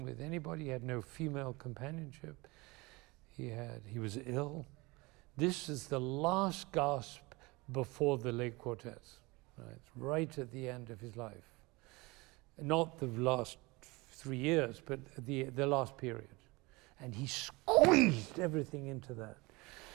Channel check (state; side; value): quieter; left; 24.1 dB